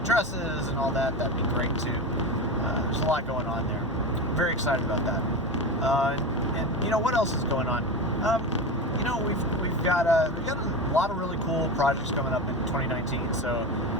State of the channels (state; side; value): normal; both; correlation 0.23